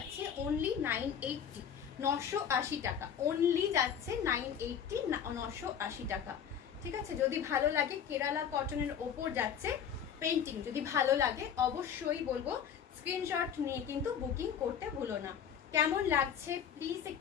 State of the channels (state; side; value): quieter; right; 8.1 dB